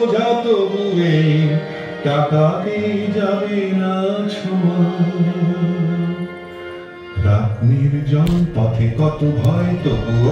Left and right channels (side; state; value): both; identical; correlation 1.00